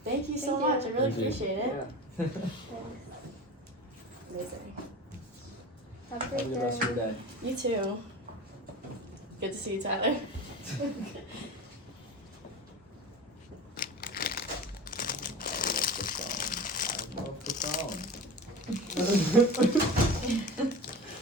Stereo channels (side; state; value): both; normal; correlation 0.33